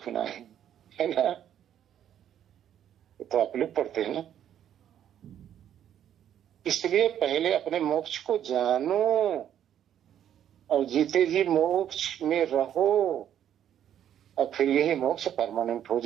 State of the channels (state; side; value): quieter; left; 10.2 dB